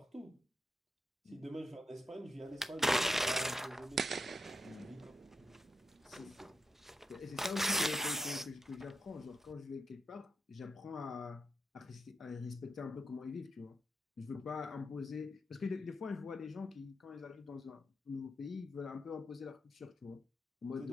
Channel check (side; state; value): both; normal; correlation 0.84